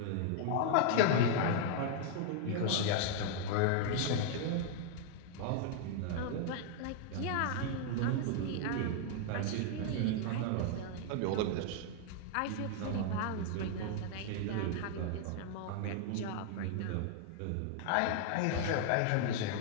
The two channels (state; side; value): different; both; correlation -0.01